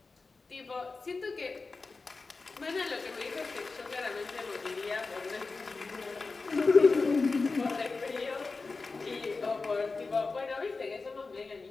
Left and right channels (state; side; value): quieter; right; 4.0 dB